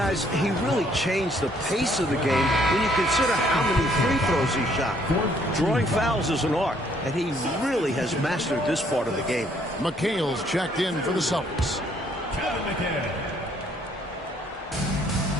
he really changed the pace of the game when you consider how many free throws he shot. Drawing fouls is an art, and he really has mastered this part of the game. McHale's checked in for the Celtics. Kevin McHale.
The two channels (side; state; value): both; normal; correlation 0.65